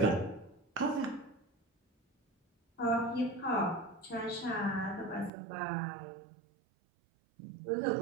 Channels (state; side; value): drops out; left; at 5.3 s